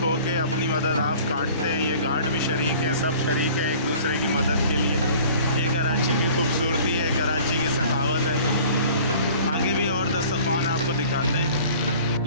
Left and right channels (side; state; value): both; inverted; correlation -0.48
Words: हो के अपनी मदद आप काटते हैं। ये गार्ड भी शरीक हैं, सब शरीक हैं एक दूसरे की मदद के लिए। ये कराची की खूबसूरती है, कराची की सखावत है। आगे भी और दस्तरखान आपको दिखाते हैं।